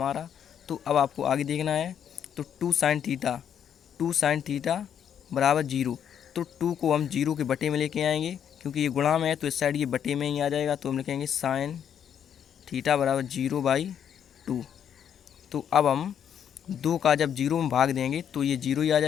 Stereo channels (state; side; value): quieter; right; 8.8 dB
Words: तो अब आपको आगे देखना है। तो 2 साइन थीटा बराबर 0। तो 2 को हम 0 के बटे में लेके आएंगे, क्योंकि ये गुणा में है तो इस साइड ये बटे में ही आ जाएगा। तो हम लिखेंगे साइन थीटा बराबर 0/2। तो अब हम 2 का जब 0 में भाग देंगे तो ये 0 ही आ